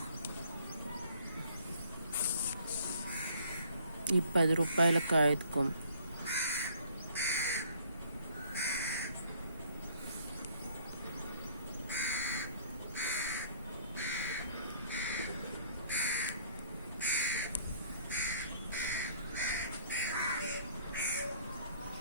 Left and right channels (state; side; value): inverted; both; correlation -0.59